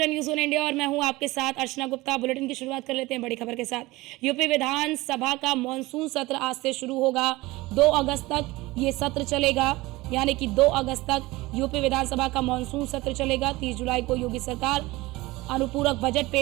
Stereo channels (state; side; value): quieter; left; 20.4 dB